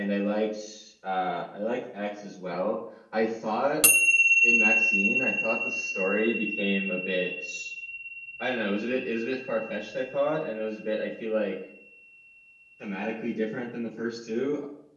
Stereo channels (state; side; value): identical; both; correlation 1.00